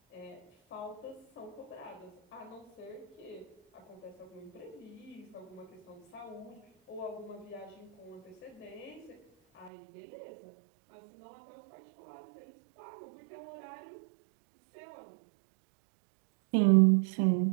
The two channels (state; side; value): drops out; left; at 9.7 s